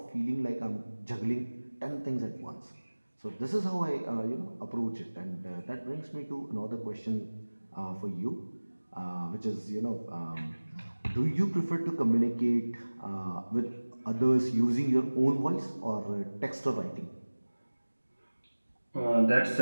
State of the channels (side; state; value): both; inverted; correlation -1.00